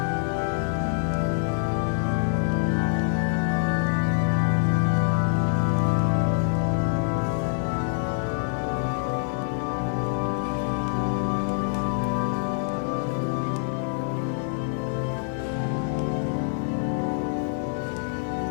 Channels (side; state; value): right; silent; digital silence